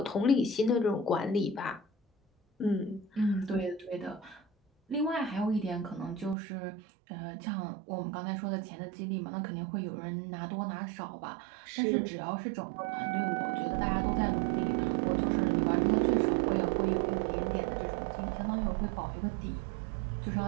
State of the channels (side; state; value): left; drops out; at 6.4 s